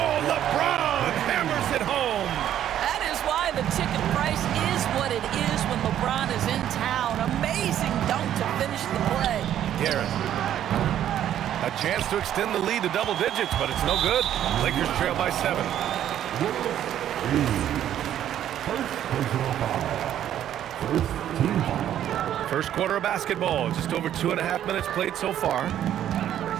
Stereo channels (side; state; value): left; quieter; 11.0 dB